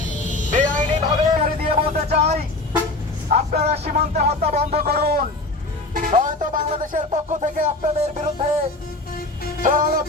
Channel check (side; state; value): right; quieter; 3.0 dB